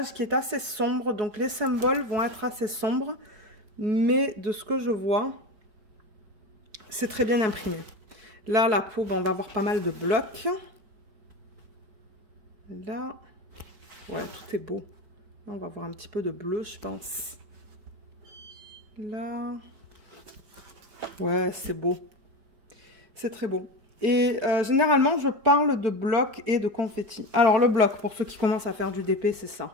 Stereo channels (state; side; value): late; left; 4.6 ms